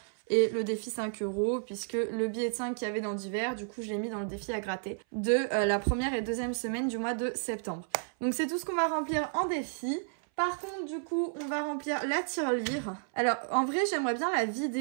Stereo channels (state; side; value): silent; left; 57 dB below the other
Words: et le défi 5 € puisque le billet de 5 qu'il y avait dans divers, du coup, je l'ai mis dans le défi à gratter de la première et deuxième semaine du mois de septembre. Donc, c'est tout ce qu'on va remplir en défi. Par contre, du coup, on va remplir la tirelire. Alors, en vrai, j'aimerais bien la